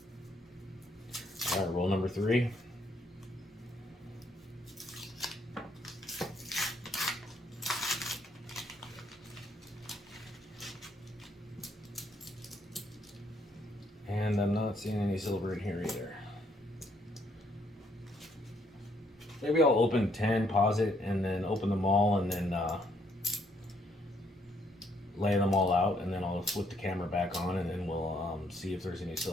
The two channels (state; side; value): normal; both; correlation 0.70